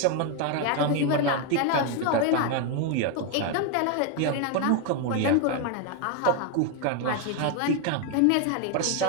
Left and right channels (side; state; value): both; different; correlation 0.01